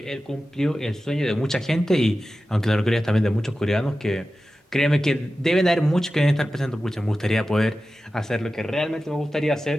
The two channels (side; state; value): both; normal; correlation 0.94